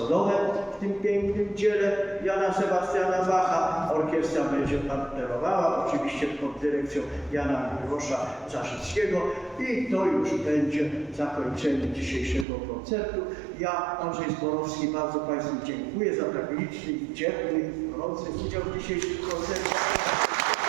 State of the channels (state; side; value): drops out; left; at 12.5 s